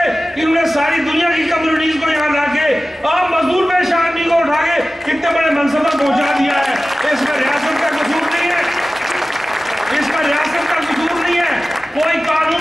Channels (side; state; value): both; normal; correlation 0.96